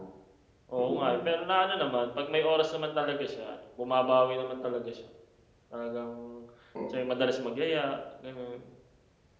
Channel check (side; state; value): both; identical; correlation 1.00